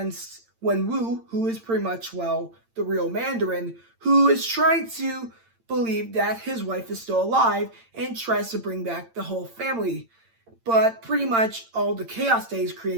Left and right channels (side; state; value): left; late; 8.8 ms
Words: Wenwu, who is pretty much, well, the real Mandarin, who is trying to believe that his wife is still alive and tries to bring back the whole family. But pretty much all the chaos that he's